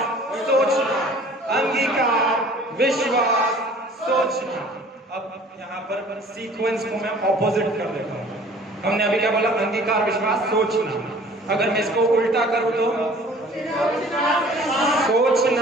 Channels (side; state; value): both; normal; correlation 0.50